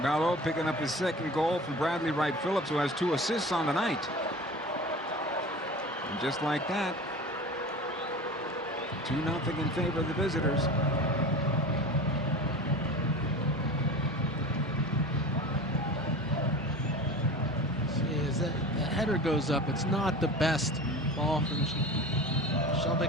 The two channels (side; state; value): both; normal; correlation 0.36